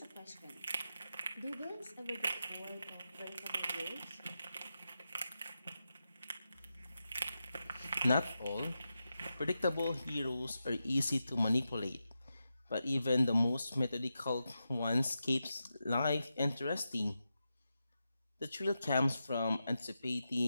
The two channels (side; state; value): both; inverted; correlation -0.89